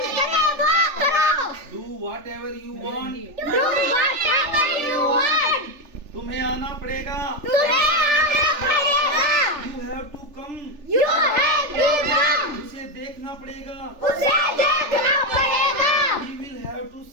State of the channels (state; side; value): late; left; 3.4 ms